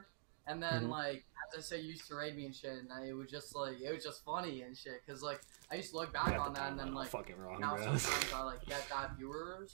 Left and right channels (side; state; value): left; silent; digital silence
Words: And then, like, as I say, you used to raid me and shit. And it was just funny and shit. Because, like, I used to look You back got on the that and then, timeline all like, fucking wrong, now bro. sometimes I, like, get that